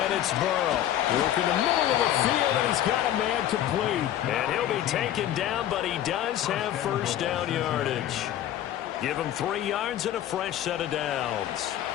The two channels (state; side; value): quieter; right; 12.0 dB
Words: it's Burrow. Working the middle of the field, and he's got a man complete. And he'll be taken down, but he does have first down yardage. Give him 3 yards and a fresh set of downs.